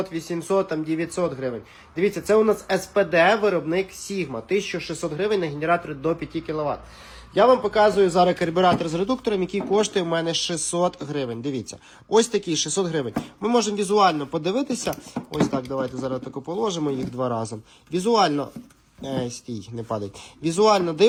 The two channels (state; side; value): identical; both; correlation 1.00